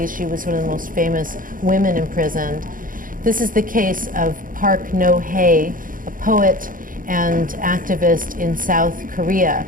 She was one of the most famous women imprisoned. This is the case of Park No-hae, a poet and activist in South Korea,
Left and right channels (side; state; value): left; late; 0.40 ms